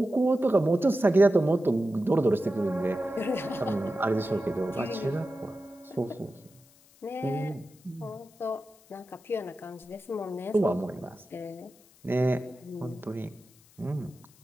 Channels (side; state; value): left; noise; hiss, 28 dB below the sound